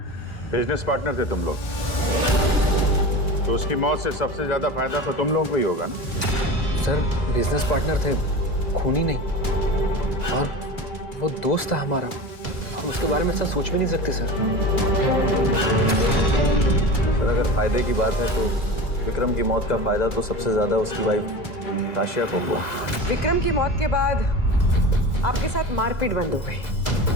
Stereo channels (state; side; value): late; right; 2.0 ms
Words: बिजनेस पार्टनर थे तुम लोग, तो उसकी मौत से सबसे ज्यादा फायदा तो तुम लोगों को ही होगा ना? सर बिजनेस पार्टनर थे, खूनी नहीं। और वो दोस्त था हमारा, हम उसके बारे में ऐसा सोच भी नहीं सकते सर। सर अगर फायदे की बात है तो विक्रम की मौत का फायदा तो सबसे ज्यादा उसकी वाइफ ताशिया को हुआ। विक्रम की मौत के बाद आपके साथ मारपीट बंद हो गई,